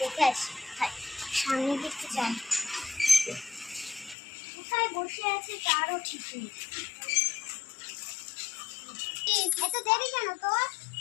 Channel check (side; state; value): right; drops out; at 4.2 s